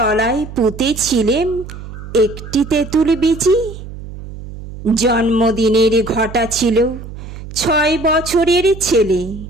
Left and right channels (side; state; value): right; noise; hum, 12 dB below the sound